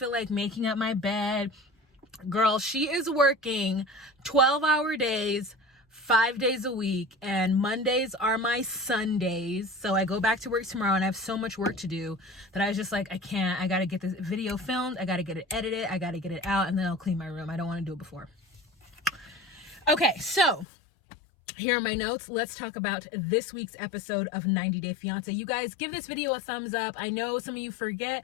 like making up my bed. Girl, she is working 12-hour days, 5 days a week, and Mondays are my Sundays. So I go back to work tomorrow, and I have so much work to do that I was just like, I can't. I got to get this video filmed. I got to get it edited. I got to get it out, and then I'll clean my room. I don't want to do it before. Okay, so here are my notes. Let's talk about this week's episode of 90 Day Fiancé. You guys, give this video a thumbs up. I know some of you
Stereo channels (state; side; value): drops out; right; at 20.7 s